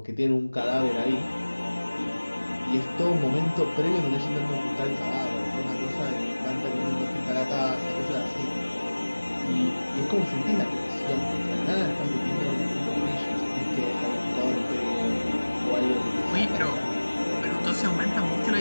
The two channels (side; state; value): both; inverted; correlation -1.00